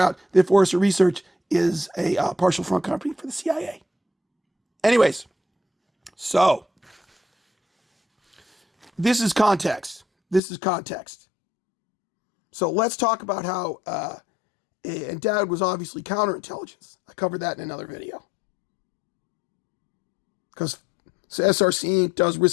that Forrester Research is a partial front company for the CIA. Anyways, so this is context. So let's talk about how, and Dad was obviously counterintelligence. I covered that in another video. Because SRC Inc. does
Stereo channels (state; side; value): drops out; right; at 10.4 s